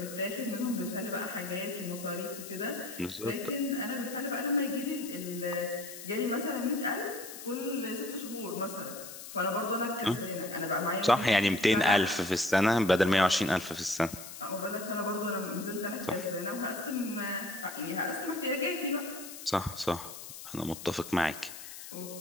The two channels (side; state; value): left; noise; hiss, 12 dB below the sound